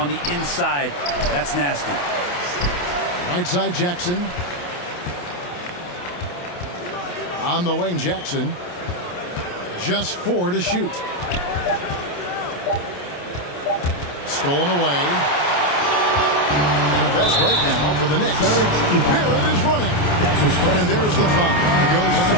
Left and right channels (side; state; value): right; late; 28 ms